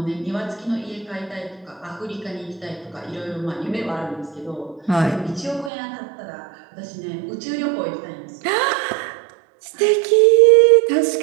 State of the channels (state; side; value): drops out; left; at 5.7 s